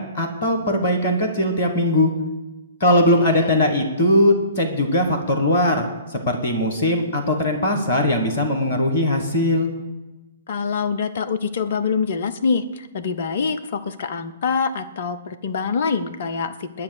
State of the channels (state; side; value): inverted; both; correlation -0.48